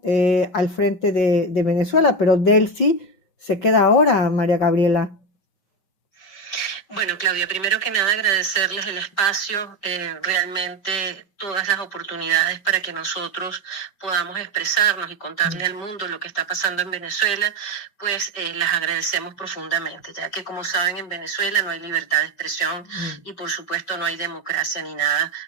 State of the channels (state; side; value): late; right; 5.3 ms